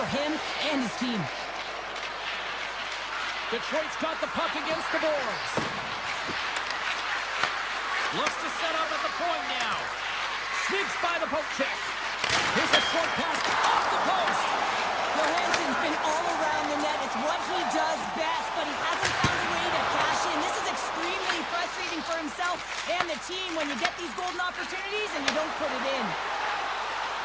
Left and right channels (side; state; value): right; noise; hum, 23 dB below the sound